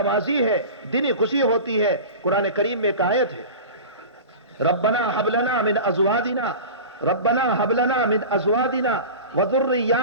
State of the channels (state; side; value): inverted; both; correlation -0.33